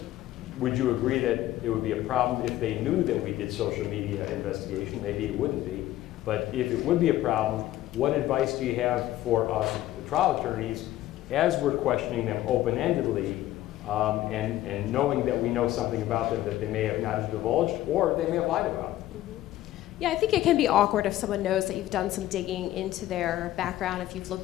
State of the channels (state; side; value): quieter; right; 14.5 dB